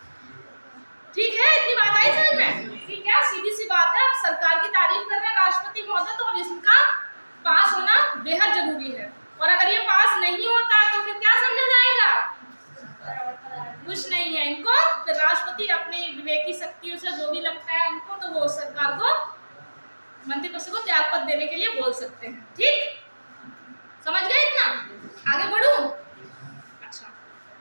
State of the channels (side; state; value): both; inverted; correlation -1.00